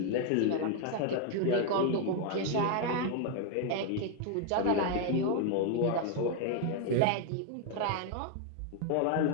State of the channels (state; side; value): different; both; correlation 0.01